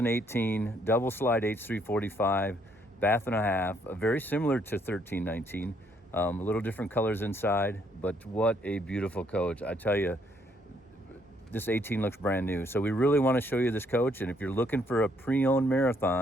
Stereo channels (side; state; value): both; normal; correlation 0.69